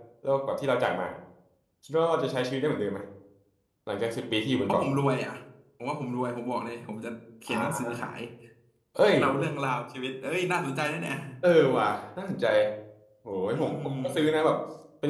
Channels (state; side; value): identical; both; correlation 1.00